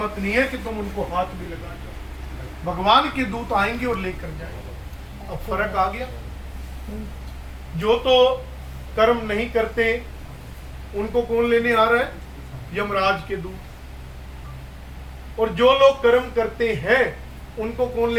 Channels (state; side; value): identical; both; correlation 1.00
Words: नहीं है कि तुम उनको हाथ भी लगा जाओ। भगवान के दूत आएंगे और लेकर जाएंगे। अब फर्क आ गया। जो तो कर्म नहीं करते उनको कौन लेने आ रहा है, यमराज के दूत। और जो लोग कर्म करते हैं उनको कौन